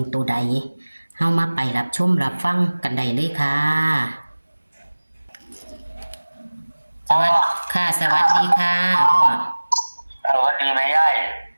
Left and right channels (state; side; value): inverted; both; correlation -1.00